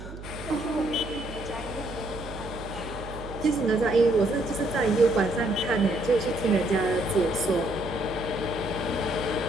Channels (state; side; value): noise; right; hum, 13 dB below the sound